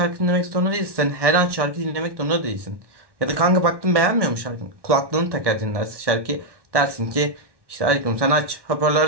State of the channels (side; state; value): left; late; 1.1 ms